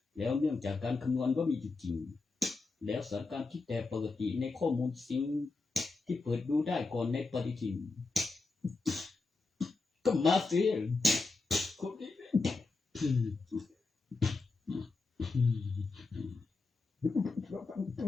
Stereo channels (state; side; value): quieter; right; 3.8 dB